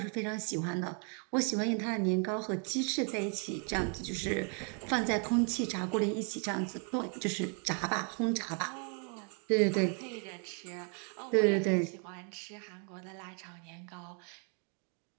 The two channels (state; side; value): quieter; left; 39.2 dB